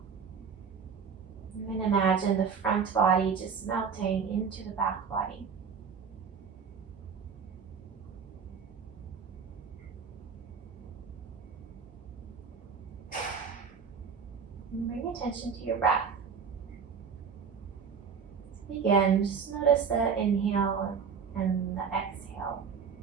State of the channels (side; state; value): left; quieter; 6.3 dB